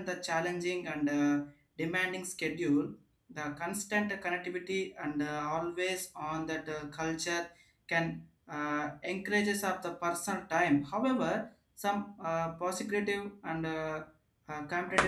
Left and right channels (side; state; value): both; identical; correlation 1.00